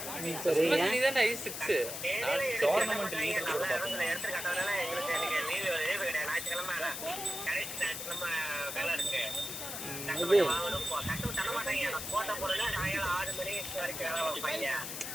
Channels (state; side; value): noise; left; hiss, 6 dB below the sound